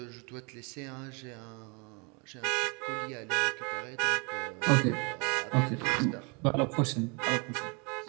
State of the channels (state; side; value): quieter; left; 32.3 dB